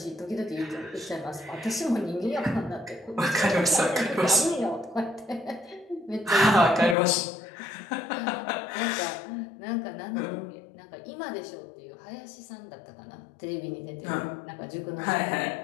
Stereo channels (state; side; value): drops out; right; at 7.0 s